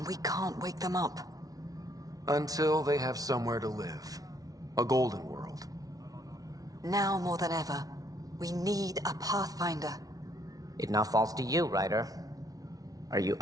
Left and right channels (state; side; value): late; left; 0.18 ms